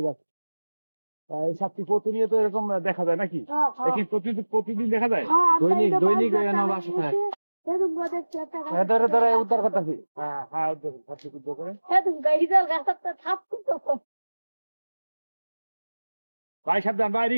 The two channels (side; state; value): both; inverted; correlation -1.00